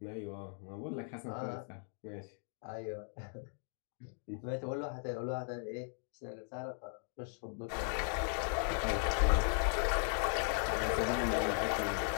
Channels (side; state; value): right; silent; 53 dB below the other